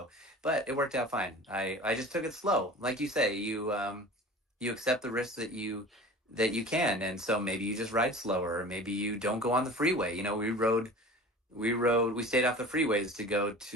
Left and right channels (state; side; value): normal; both; correlation 0.39